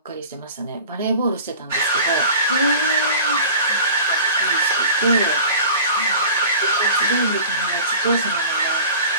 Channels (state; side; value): inverted; both; correlation -0.39